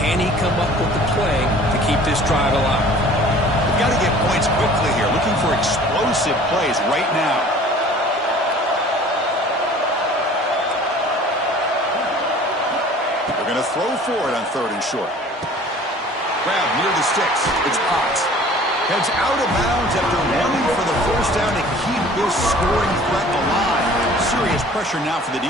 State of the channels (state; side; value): normal; both; correlation 0.48